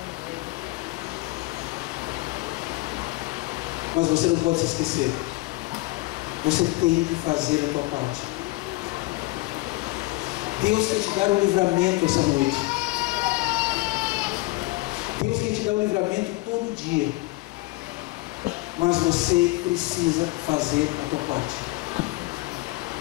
mas você não pode se esquecer. Você tem que fazer a tua parte. Deus quer te dar um livramento essa noite. Deus quer te dar um livramento todo dia. Mas você precisa fazer a tua parte.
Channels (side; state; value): right; quieter; 21.7 dB